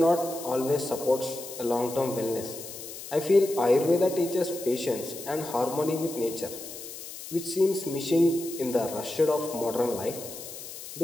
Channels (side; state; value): left; noise; hiss, 12 dB below the sound